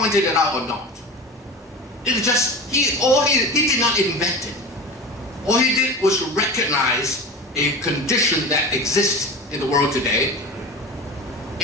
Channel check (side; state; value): both; normal; correlation 0.31